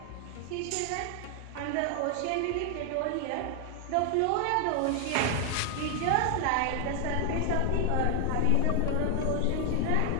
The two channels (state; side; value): different; both; correlation 0.00